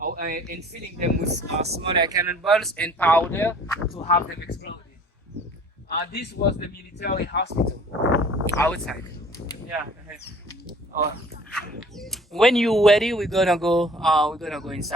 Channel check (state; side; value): normal; both; correlation 0.51